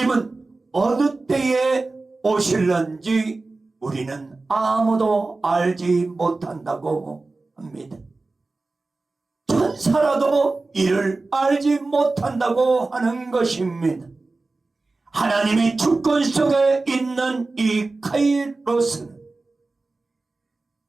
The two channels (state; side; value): quieter; left; 3.5 dB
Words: 어느 때에 오실런지 우리는 아무도 알지 못한다고 합니다. 천사라도 이를 알지 못한다고 하는 것입니다. 하나님의 주권 속에 있는 이 카이로스는